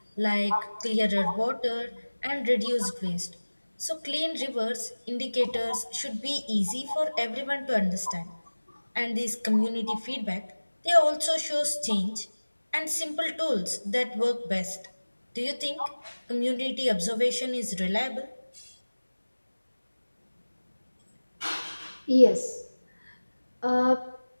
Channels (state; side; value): inverted; both; correlation -1.00